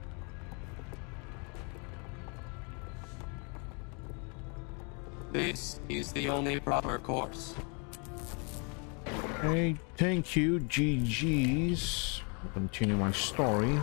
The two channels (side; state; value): right; quieter; 35.5 dB